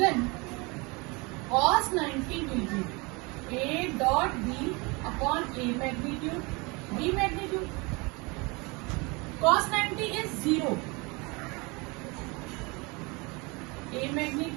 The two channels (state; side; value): quieter; left; 27.4 dB